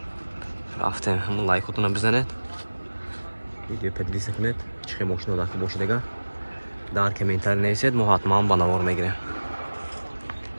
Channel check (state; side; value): inverted; both; correlation -1.00